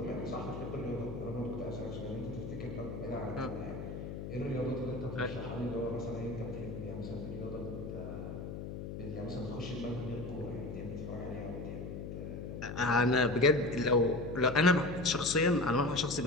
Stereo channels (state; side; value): noise; left; hum, 7 dB below the sound